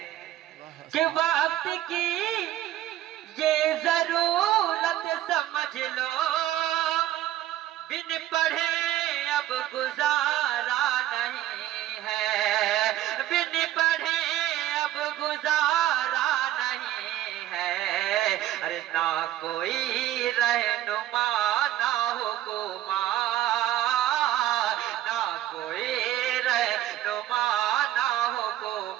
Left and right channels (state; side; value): quieter; left; 13.5 dB